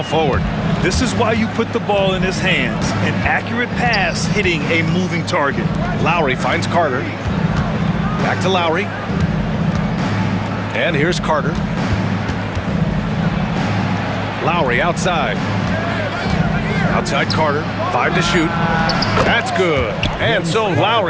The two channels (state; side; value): identical; both; correlation 1.00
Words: forward. This is why you put the ball in his hands. An accurate pass hitting a moving target. Lowry finds Carter. Back to Lowry. And here's Carter. Lowry outside. Outside Carter. 5 to shoot. That's good. And so